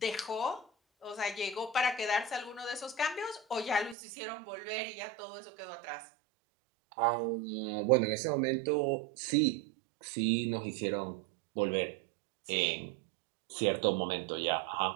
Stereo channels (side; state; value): left; drops out; at 4.0 s